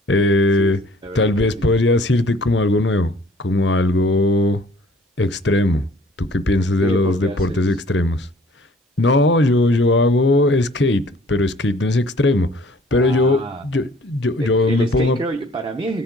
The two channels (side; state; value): both; normal; correlation 0.54